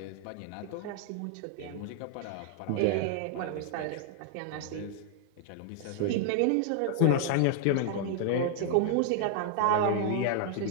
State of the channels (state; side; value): different; both; correlation -0.01